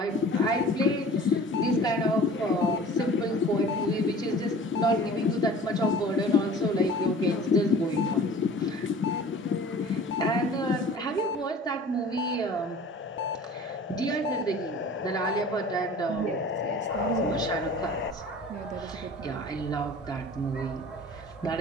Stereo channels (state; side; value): normal; both; correlation 0.44